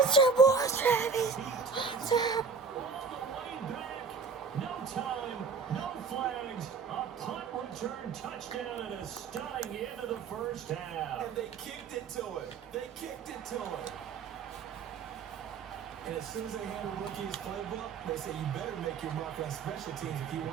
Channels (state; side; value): quieter; left; 5.3 dB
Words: boy, Travis! Hunter! All the way back. No time, no flags. A punt return touchdown and a stunning end of the first half. And they kicked it to him. They kicked it to him. And as soon as they hand a rookie his playbook, they say you better make your mark on special teams if you